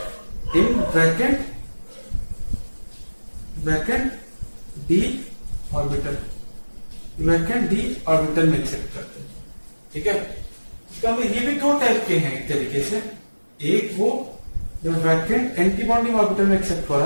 in vacant d orbital, vacant d orbital में एक्सेप्ट करते हैं। ठीक है, इसका मतलब ये भी दो टाइप के हैं एक तरीके से। एक वो जो वैकेंट एंटी बॉन्डिंग ऑर्बिटल में एक्सेप्ट हो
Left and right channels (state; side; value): inverted; both; correlation -1.00